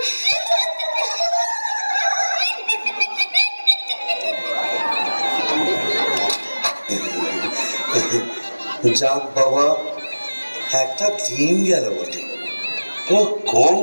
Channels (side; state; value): both; inverted; correlation -1.00